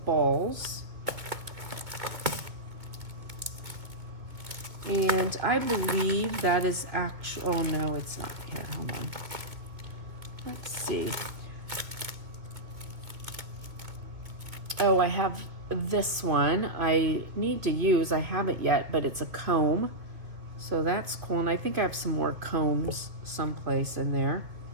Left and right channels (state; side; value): late; left; 2.5 ms